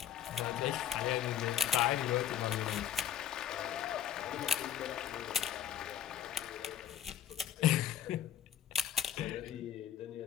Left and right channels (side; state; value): right; quieter; 10.0 dB